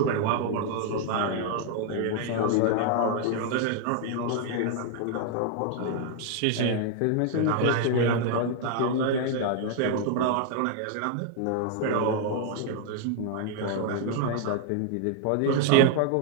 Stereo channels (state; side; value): different; both; correlation 0.00